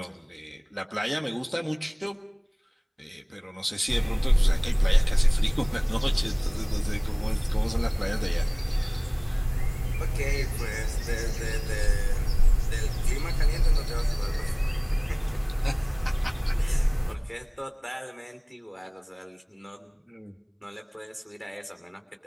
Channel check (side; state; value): both; identical; correlation 1.00